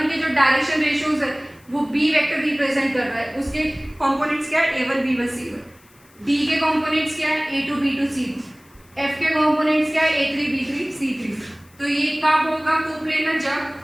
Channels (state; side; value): noise; left; hiss, 29 dB below the sound